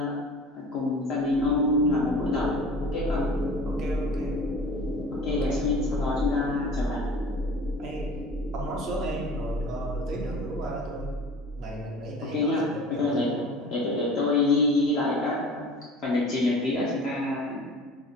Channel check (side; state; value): both; normal; correlation 0.42